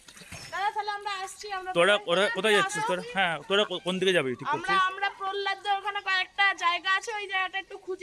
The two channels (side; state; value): both; identical; correlation 1.00